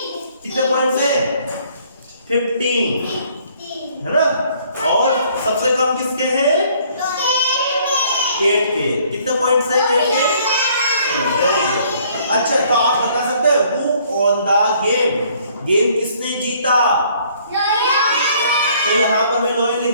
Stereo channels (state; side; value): inverted; both; correlation -0.61